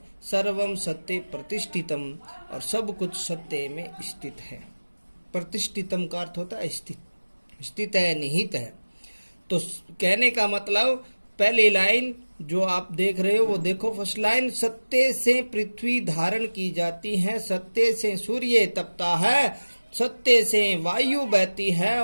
सर्वम सत्य प्रतिष्ठितम, और सब कुछ सत्य में स्थित है। प्रतिष्ठितम का अर्थ होता है स्थित, स्थित है, निहित है। तो कहने का मतलब पहली लाइन जो आप देख रहे हो वो देखो, फर्स्ट लाइन, सत्य से पृथ्वी धारण की जाती है, सत्य से सूर्य तपता है, सत्य से वायु बहती है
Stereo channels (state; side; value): inverted; both; correlation -1.00